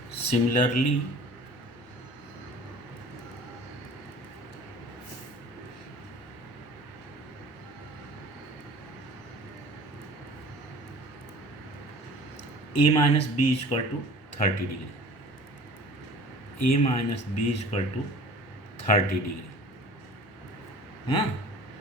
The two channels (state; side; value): normal; both; correlation 0.45